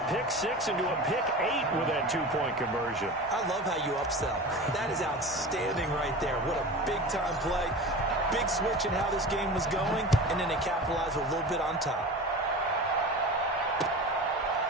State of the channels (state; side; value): normal; both; correlation 0.32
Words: pick-6 into a pick-8 with that two-point conversion. I love how you upsell. That is outstanding right there. What a big-time play. Big switch in how this game was going, and then they capitalized with a little bit on top.